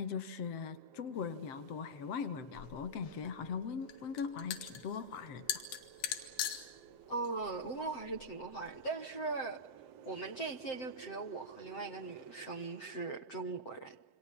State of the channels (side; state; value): right; late; 7.7 ms